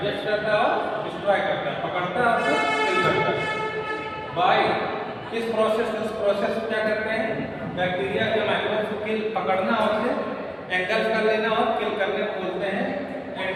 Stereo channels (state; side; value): identical; both; correlation 1.00